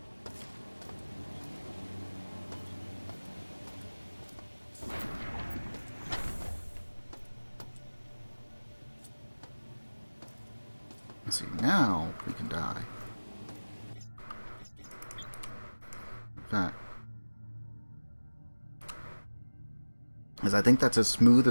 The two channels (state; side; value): inverted; both; correlation -1.00